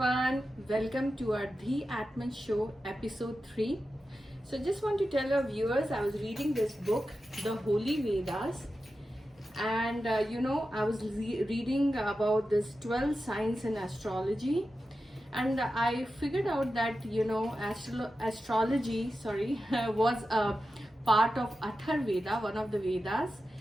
welcome to our Dhi Atman Show episode 3. So just want to tell our viewers, I was reading this book, The Holy Vedas, and I was reading about this 12 signs in astrology, and I figured out that astrology was a part of Atharveda, one of the Vedas.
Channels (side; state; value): both; normal; correlation 0.92